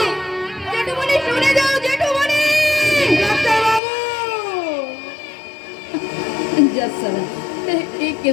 জেঠুমনি শুনে যাও জেঠুমনি ডাক্তার বাবু জাসালা এই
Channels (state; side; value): drops out; right; at 3.8 s